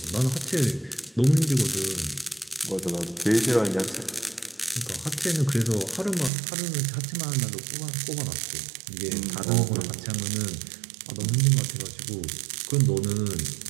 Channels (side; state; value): left; drops out; at 6.3 s